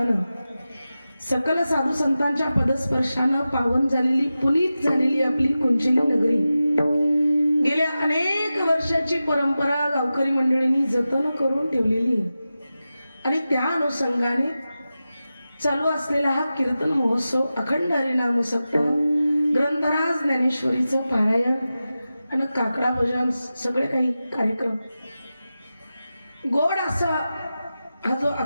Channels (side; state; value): both; inverted; correlation -0.93